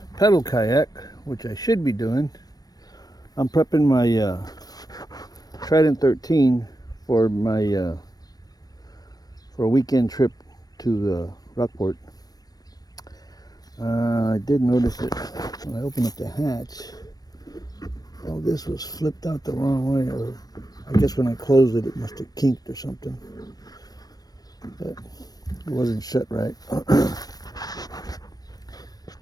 pedal kayak, which I should be doing, I'm prepping my Trident 13 for my for a weekend trip to the Rockport. I did notice that when I opened up the hatch, all this was flipped out the wrong way, or I guess when I closed it, it must have kinked or something. But it wasn't shut right.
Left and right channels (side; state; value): right; late; 0.19 ms